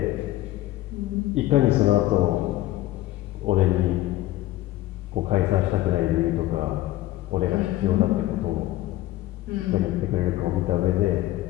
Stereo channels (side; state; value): right; quieter; 15.8 dB